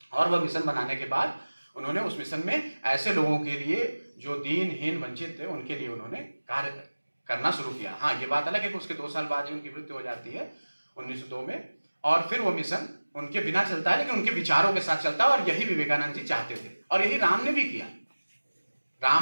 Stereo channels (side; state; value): both; inverted; correlation -1.00